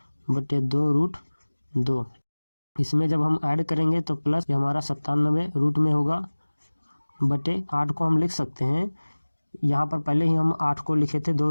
इसमें जब हम ऐड करेंगे तो प्लस हमारा 97 रूट में होगा बटे 8 को हम लिख सकते हैं। यहाँ पर पहले ही हम 8 को लिखे थे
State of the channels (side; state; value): both; inverted; correlation -1.00